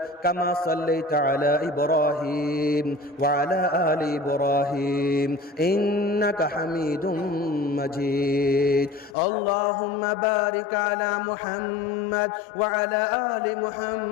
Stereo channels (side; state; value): right; drops out; at 9.2 s